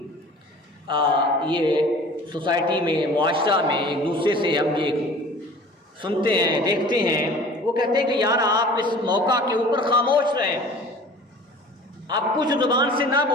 یہ سوسائٹی میں، معاشرہ میں ایک دوسرے سے ہم یہ سنتے ہیں، دیکھتے ہیں، وہ کہتے ہیں کہ یار آپ اس موقع کے اوپر خاموش رہیں، آپ کچھ زبان سے نہ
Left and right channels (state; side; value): normal; both; correlation 0.45